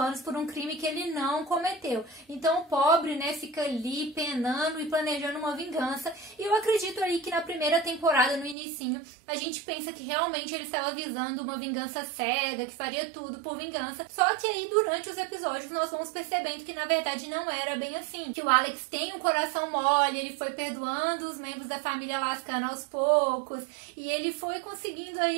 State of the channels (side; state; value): left; drops out; at 8.6 s